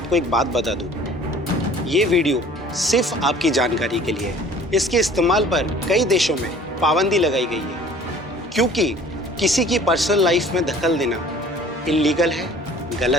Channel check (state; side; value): normal; both; correlation 0.49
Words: एक बात बता दूं, ये वीडियो सिर्फ आपकी जानकारी के लिए है। इसके इस्तेमाल पर कई देशों में पाबंदी लगाई गई है, क्योंकि किसी की पर्सनल लाइफ में दखल देना इल्लीगल है,